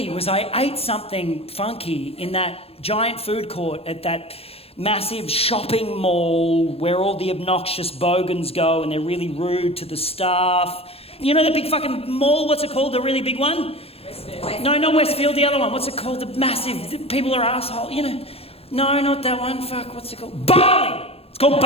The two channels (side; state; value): right; late; 0.29 ms